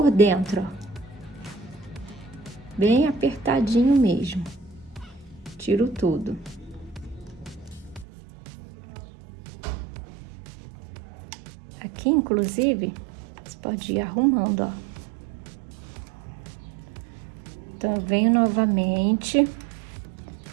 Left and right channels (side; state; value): left; drops out; at 8.1 s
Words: dentro, ó. Bem apertadinho mesmo. Tiro tudo. Aqui, inclusive, você pode ir arrumando, ó. Então, eu venho novamente,